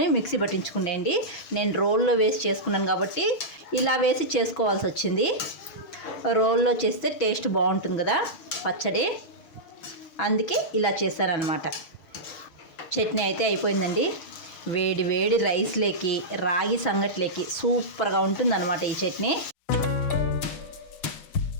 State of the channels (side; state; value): right; late; 6.4 ms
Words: మిక్సీ పట్టించుకునేయండి. నేను రోల్లో వేసి చేసుకున్నాను కాబట్టి ఇలా వేసి చేసుకోవాల్సి వచ్చింది. రోల్లో చేస్తే టేస్ట్ బాగుంటుంది కదా పచ్చడి, అందుకే ఇలా చేశారనమాట. చట్నీ అయితే అయిపోయిందండి. వేడి వేడి రైస్లోకి, రాగి సంగట్లోకి సూపర్గా ఉంటుందన్నమాట ఈ చట్నీ.